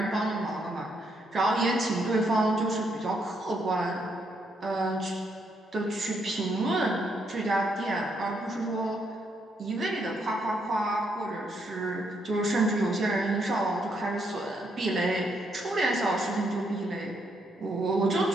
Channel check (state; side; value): normal; both; correlation 0.75